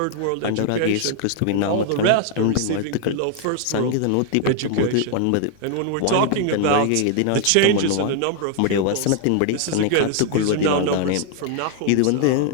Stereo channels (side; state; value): both; different; correlation 0.00